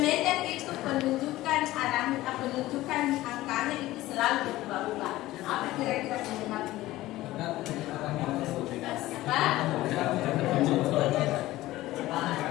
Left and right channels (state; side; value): quieter; right; 16.7 dB